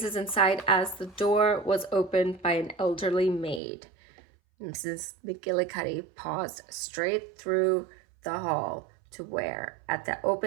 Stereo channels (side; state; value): left; drops out; at 3.6 s